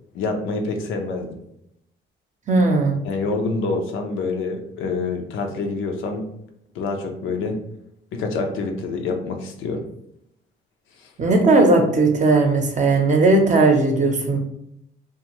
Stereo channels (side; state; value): both; normal; correlation 0.44